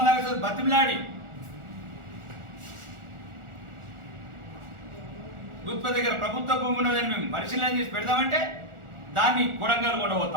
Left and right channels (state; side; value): late; left; 1.4 ms